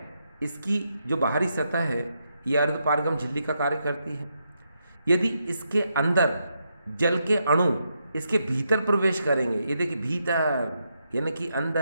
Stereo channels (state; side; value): inverted; both; correlation -0.82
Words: इसकी जो बाहरी सतह है ये अर्धपारगम झिल्ली का कार्य करती है। यदि इसके अंदर जल के अणु इसके भीतर प्रवेश करेंगे, ये देखिए भीतर यानी कि